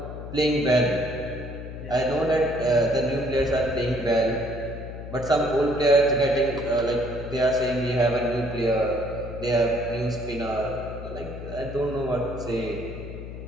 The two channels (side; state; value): left; noise; hum, 10 dB below the sound